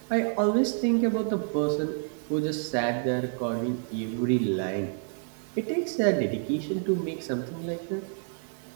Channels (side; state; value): left; silent; 58 dB below the other